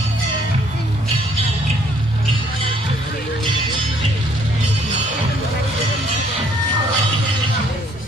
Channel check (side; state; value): both; normal; correlation 0.64